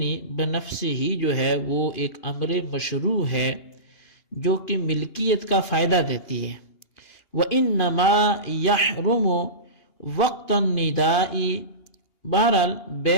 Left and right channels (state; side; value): late; right; 2.8 ms